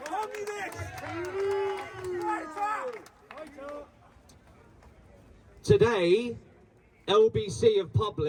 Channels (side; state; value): both; identical; correlation 1.00